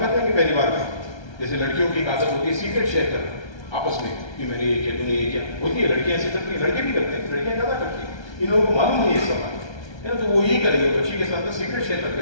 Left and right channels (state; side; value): late; right; 1.3 ms